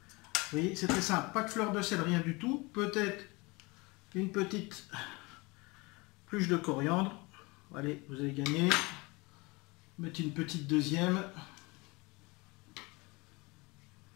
Vous voyez, c'est très simple. Pas de fleur de sel, rien du tout. Peut-être une petite pluche de coriandre. Allez, vous avez gagné. Mettez une petite deuxième.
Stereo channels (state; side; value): quieter; right; 25.3 dB